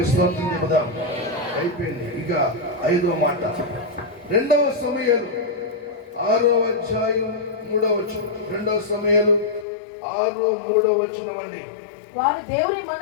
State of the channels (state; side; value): drops out; right; at 9.7 s